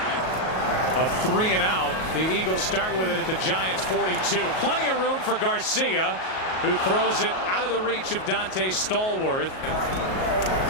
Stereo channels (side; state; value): right; late; 38 ms